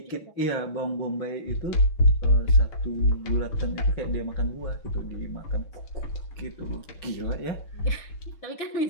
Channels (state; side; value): late; right; 6.1 ms